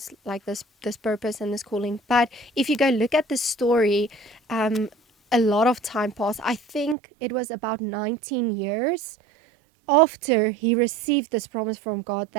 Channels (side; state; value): left; drops out; at 7.0 s